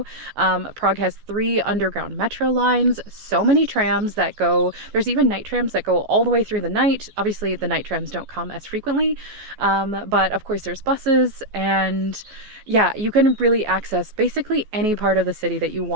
Prague has 3 underground metro lines, so many trams that go, there's even night trams that go all the way through the night. Obviously, the night trams don't come as frequently, but of course there's buses, and yeah, you can really access basically any part of the city that you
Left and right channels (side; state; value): left; late; 14 ms